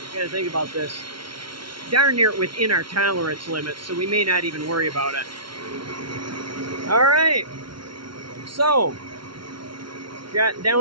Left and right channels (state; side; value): late; left; 0.74 ms